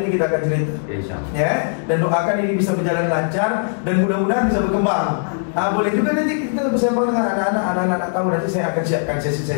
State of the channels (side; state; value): right; silent; digital silence